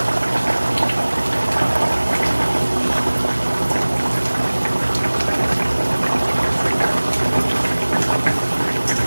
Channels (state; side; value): inverted; both; correlation -1.00